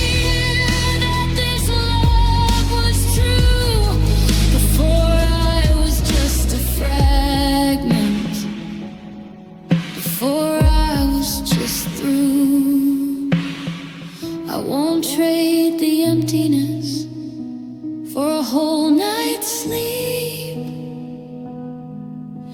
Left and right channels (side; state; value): both; identical; correlation 1.00